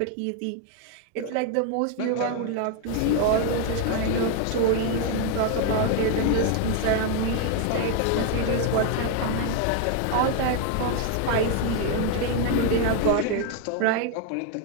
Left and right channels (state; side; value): different; both; correlation 0.01